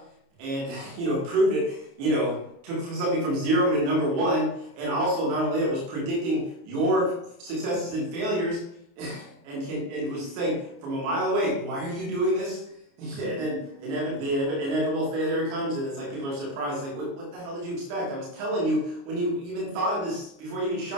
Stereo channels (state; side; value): late; left; 29 ms